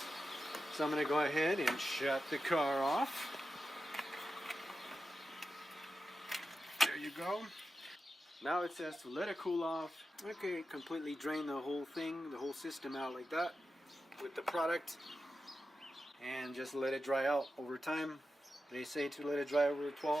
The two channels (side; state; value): both; normal; correlation 0.90